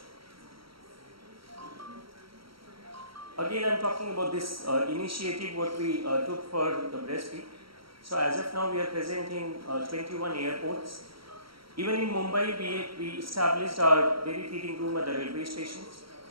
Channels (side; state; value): left; late; 0.75 ms